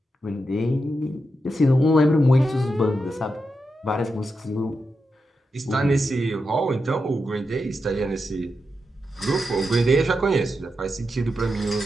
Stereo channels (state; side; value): normal; both; correlation 0.87